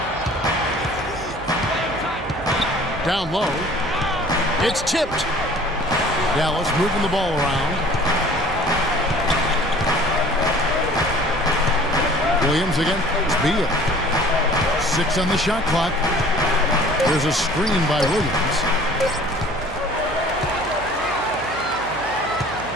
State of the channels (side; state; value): right; noise; hum, 15 dB below the sound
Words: Down low. It's tipped. Dallas moving the ball around. Williams again. Beal. 6 on the shot clock. There's a screen by Williams.